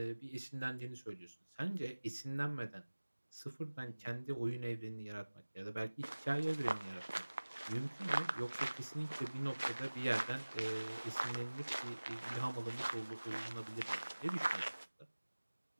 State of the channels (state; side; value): inverted; both; correlation -1.00